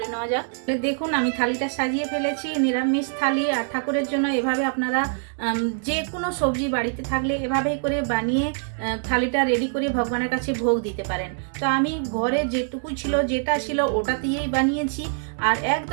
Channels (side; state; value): left; silent; digital silence